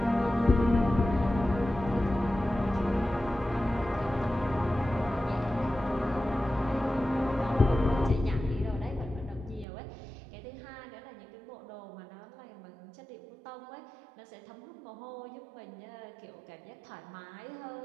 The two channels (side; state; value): left; drops out; at 9.7 s